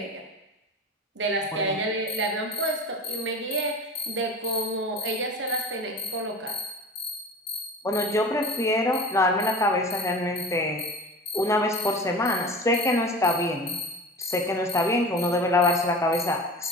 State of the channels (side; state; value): both; normal; correlation 0.35